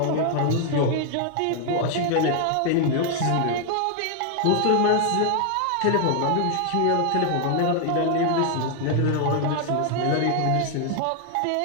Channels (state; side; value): different; both; correlation 0.00